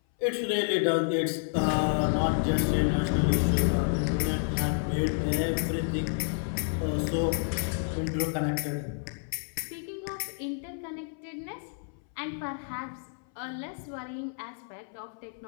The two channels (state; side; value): silent; right; 58 dB below the other